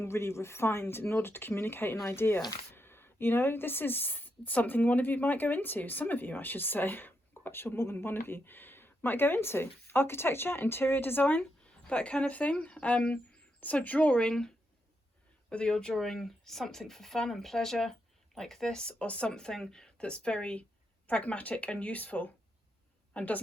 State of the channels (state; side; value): normal; both; correlation 0.82